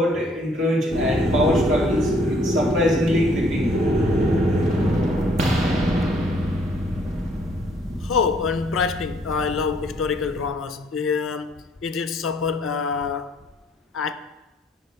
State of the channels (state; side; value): normal; both; correlation 0.64